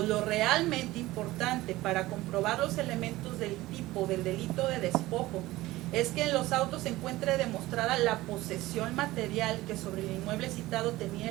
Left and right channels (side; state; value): left; quieter; 18.0 dB